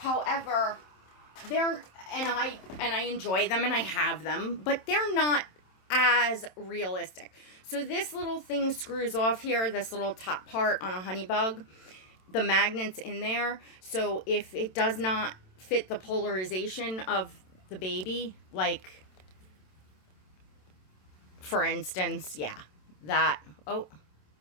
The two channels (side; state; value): right; late; 27 ms